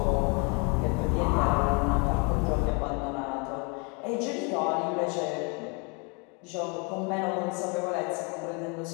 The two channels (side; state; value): right; quieter; 33.8 dB